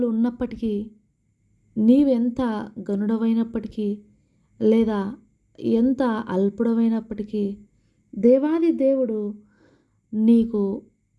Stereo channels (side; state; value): both; identical; correlation 1.00